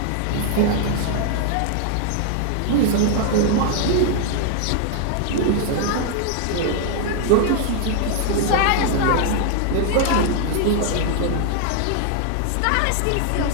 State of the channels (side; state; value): both; different; correlation 0.00